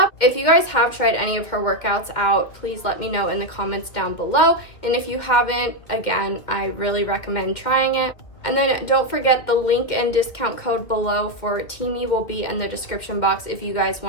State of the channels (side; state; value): right; late; 2.4 ms